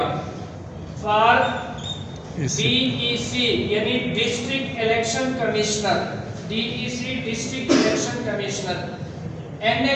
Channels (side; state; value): both; identical; correlation 1.00